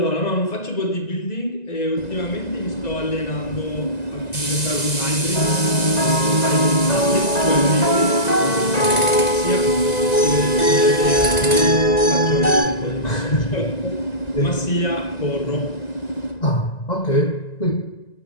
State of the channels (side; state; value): right; late; 1.9 ms